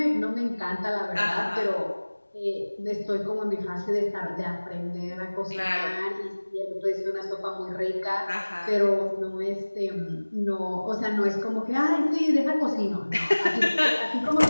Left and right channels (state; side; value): inverted; both; correlation -1.00